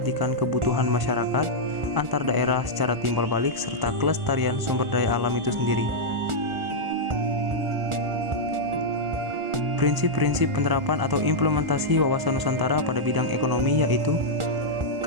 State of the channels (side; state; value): left; late; 1.0 ms